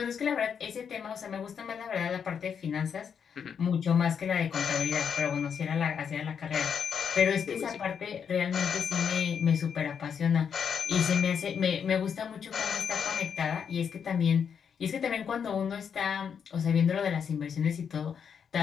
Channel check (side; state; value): right; quieter; 7.2 dB